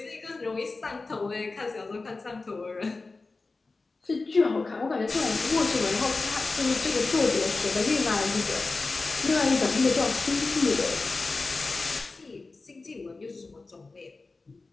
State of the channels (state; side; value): quieter; right; 3.7 dB